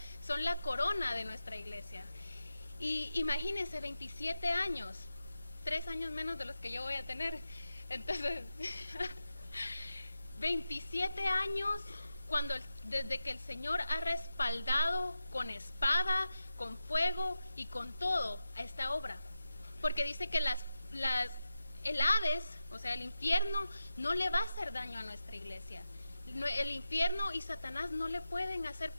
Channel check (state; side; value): inverted; both; correlation -0.91